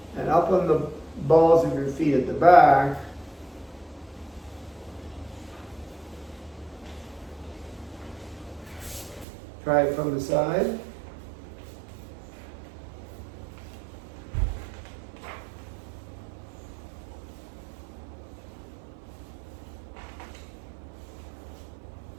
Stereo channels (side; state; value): left; drops out; at 9.2 s